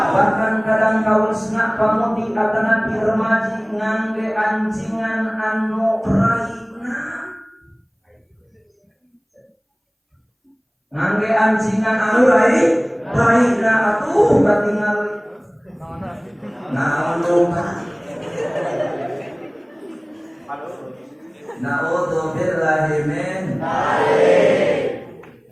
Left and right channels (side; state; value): both; identical; correlation 1.00